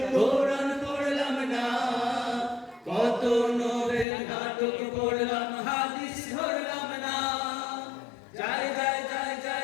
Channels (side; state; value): right; drops out; at 4.0 s